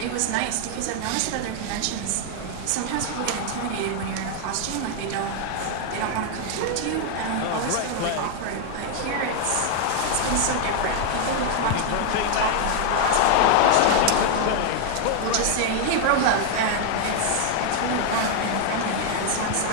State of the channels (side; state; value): both; different; correlation 0.00